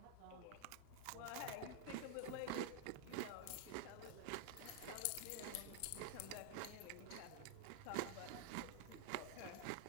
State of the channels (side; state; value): both; different; correlation 0.00